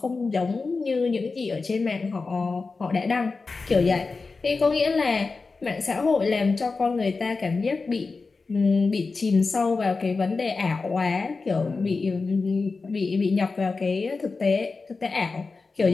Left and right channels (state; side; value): quieter; right; 4.1 dB